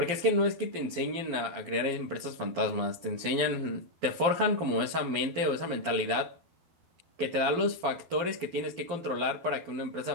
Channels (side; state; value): left; late; 12 ms